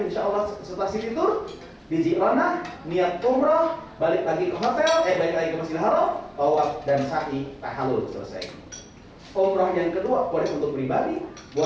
Allah setelah city tour. Di Ji'rana, niat umroh, balik lagi ke hotel, balik lagi ke Masjidil Haram, tawaf dan sa'i, tahallul, selesai. Umroh yang kedua boleh untuk pribadi,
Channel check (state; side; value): identical; both; correlation 1.00